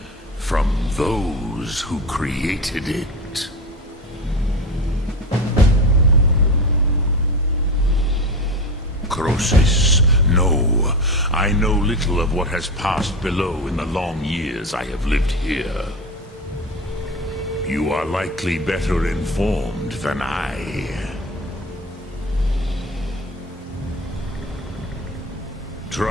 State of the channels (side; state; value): both; normal; correlation 0.24